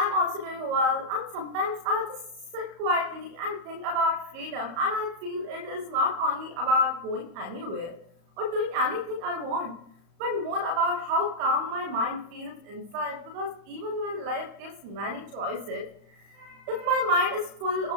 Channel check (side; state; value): left; late; 35 ms